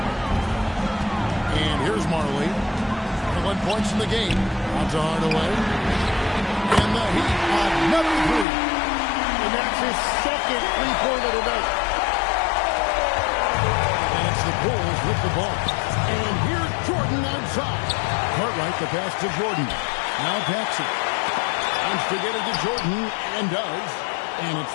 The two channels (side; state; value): right; drops out; at 8.5 s